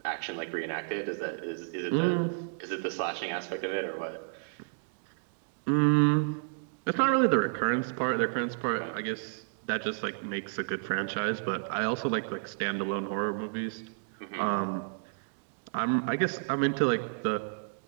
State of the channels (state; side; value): silent; left; digital silence